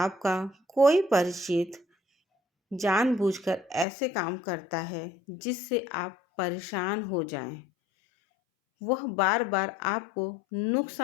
कोई परिचित जानबूझकर ऐसे काम करता है जिससे आप परेशान हो जाएं, वह बार बार आपको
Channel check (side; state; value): right; drops out; at 3.9 s